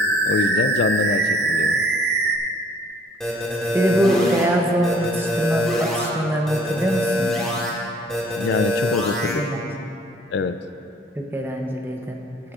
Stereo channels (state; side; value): normal; both; correlation 0.57